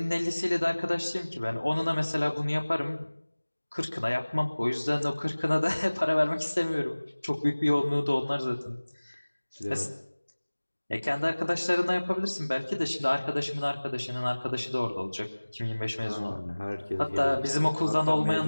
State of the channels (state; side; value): inverted; both; correlation -1.00